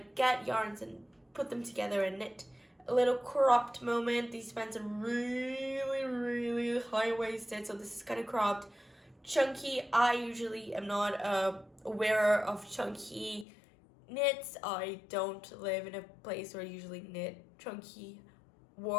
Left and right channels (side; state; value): right; drops out; at 13.5 s